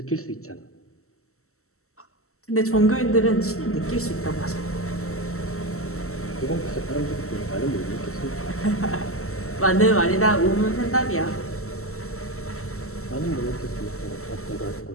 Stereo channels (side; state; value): right; late; 0.63 ms